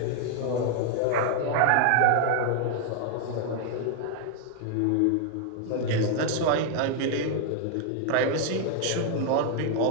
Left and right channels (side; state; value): both; different; correlation 0.00